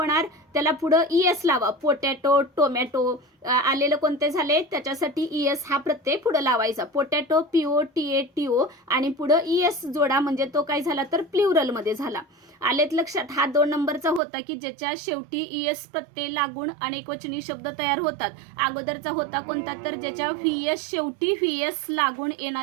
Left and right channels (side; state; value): left; drops out; at 14.2 s